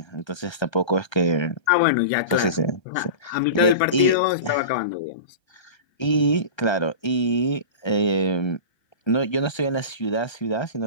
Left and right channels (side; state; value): right; late; 1.3 ms